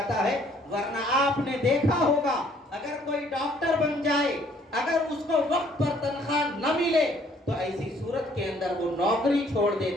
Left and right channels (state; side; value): normal; both; correlation 0.62